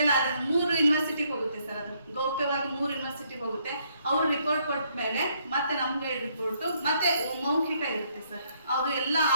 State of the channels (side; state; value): both; inverted; correlation -0.70